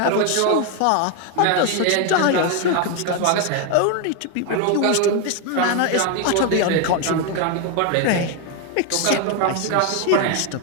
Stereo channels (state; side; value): different; both; correlation 0.01